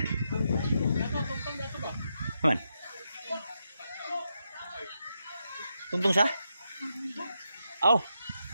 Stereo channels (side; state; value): both; inverted; correlation -0.84